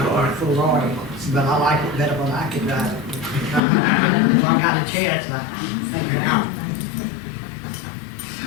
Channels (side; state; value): right; drops out; at 3.6 s